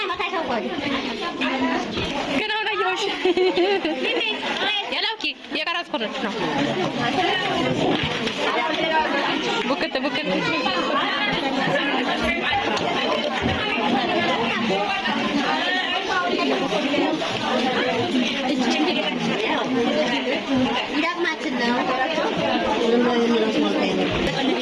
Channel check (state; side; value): identical; both; correlation 1.00